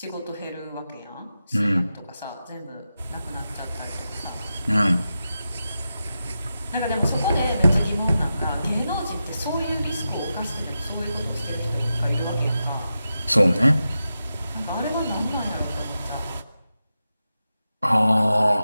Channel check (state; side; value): inverted; both; correlation -0.90